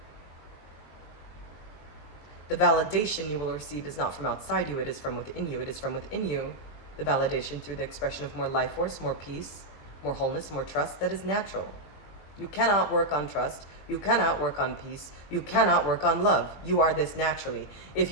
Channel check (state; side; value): late; right; 20 ms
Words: The validation you will receive is not from outside you, it is from within you. It is from within you, the validation through the expression of more life force, more peace, more wholeness, more trust that is natural. You cannot work on trust. You cannot work on peace. You cannot work on love. You are this naturally. If